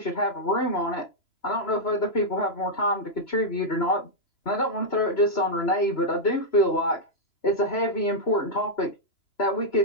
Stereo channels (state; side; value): late; right; 3.0 ms